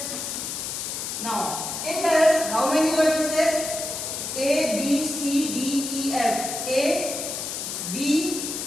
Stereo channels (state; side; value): noise; left; hiss, 5 dB below the sound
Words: Now, it has how many vertices? A, B, C, D, E, F. A, B,